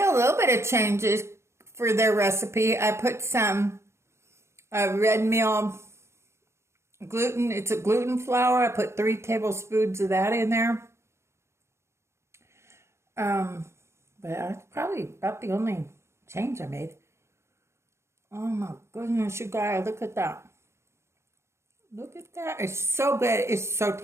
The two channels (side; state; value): left; late; 0.13 ms